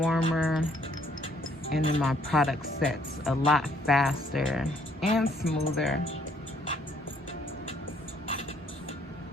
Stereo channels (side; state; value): both; normal; correlation 0.66